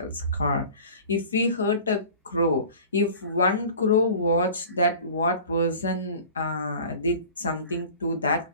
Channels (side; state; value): both; inverted; correlation -0.42